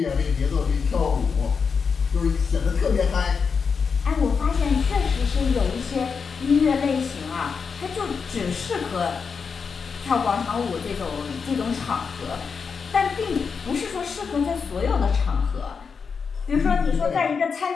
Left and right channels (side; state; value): right; quieter; 5.7 dB